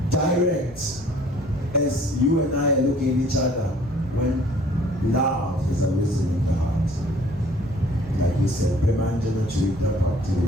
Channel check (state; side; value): normal; both; correlation 0.55